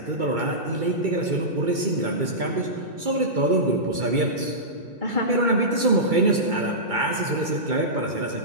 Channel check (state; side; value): late; left; 2.3 ms